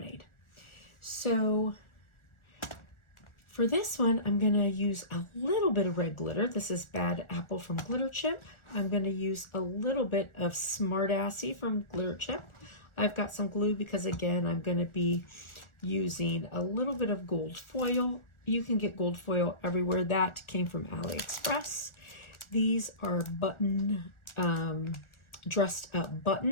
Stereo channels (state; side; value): late; right; 1.4 ms